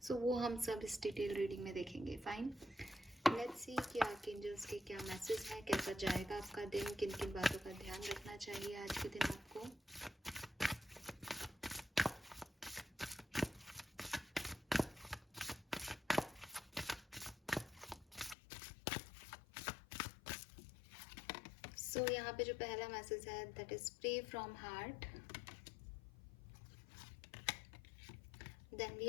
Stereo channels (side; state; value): right; drops out; at 18.4 s